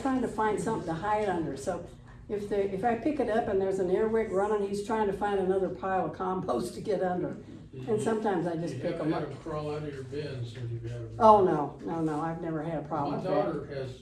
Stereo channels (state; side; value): identical; both; correlation 1.00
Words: to find something to hide under, so if I pick it up and there's an earwig running, he's trying to find another pile of compost to get under. And sometimes I just pick them You up. haven't had them crawl out of your bins since you've had them? Oh, no, I've never had a problem My with that. daughter has